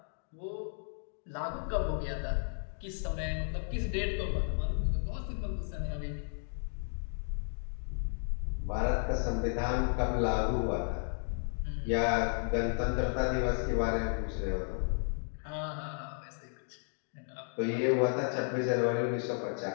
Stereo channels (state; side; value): silent; right; 55 dB below the other